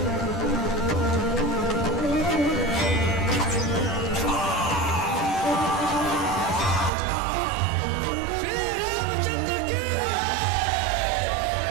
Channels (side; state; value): left; drops out; at 6.9 s